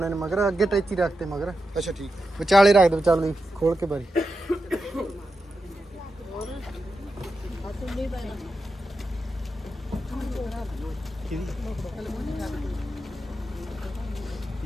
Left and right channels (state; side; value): normal; both; correlation 0.89